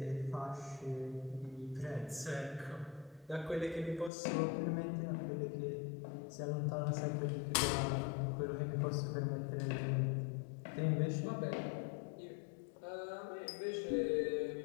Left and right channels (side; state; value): right; drops out; at 4.1 s